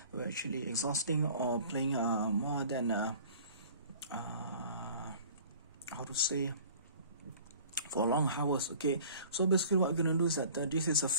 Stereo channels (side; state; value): both; inverted; correlation -0.47